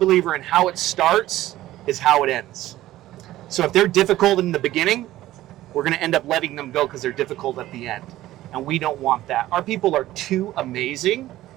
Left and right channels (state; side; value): quieter; left; 15.1 dB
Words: in how it starts is how it ends. So if they're difficult in the beginning, we're going to end up letting them go because they're difficult at the end. And we don't want that. Our people are too amazing